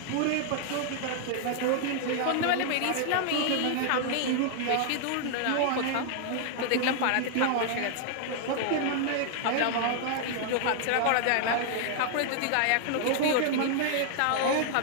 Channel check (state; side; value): different; both; correlation -0.01